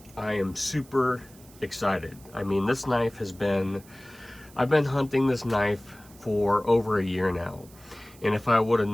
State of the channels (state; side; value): noise; right; hiss, 24 dB below the sound